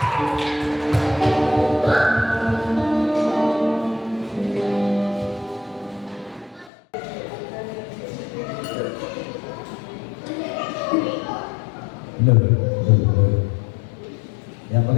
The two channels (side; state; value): right; drops out; at 6.7 s